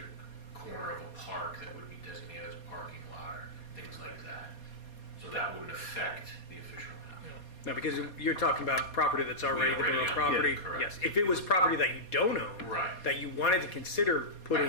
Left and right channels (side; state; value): right; late; 4.2 ms